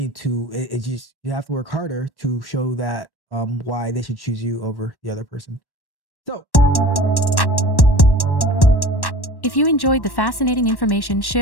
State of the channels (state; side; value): late; right; 1.1 ms